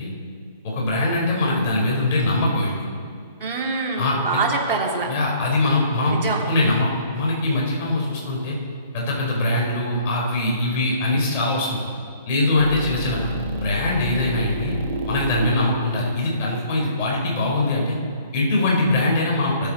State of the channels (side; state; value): both; inverted; correlation -0.58